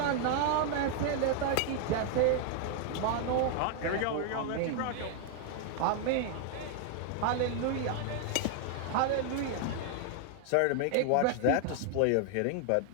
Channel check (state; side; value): different; both; correlation 0.00